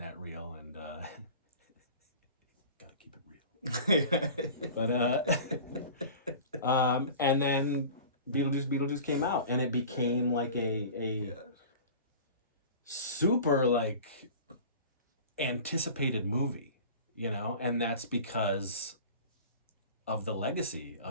real, and gotta keep it real. But and then Beetlejuice came out, and it became like a super like anticipated movie, you know, and that's because of the legacy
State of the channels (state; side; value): inverted; both; correlation -0.39